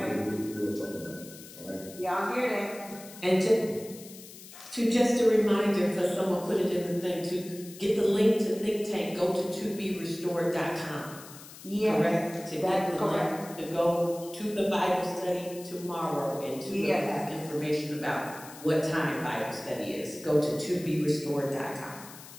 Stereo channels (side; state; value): left; noise; hiss, 17 dB below the sound